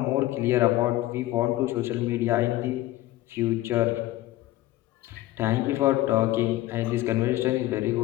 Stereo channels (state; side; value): quieter; right; 16.2 dB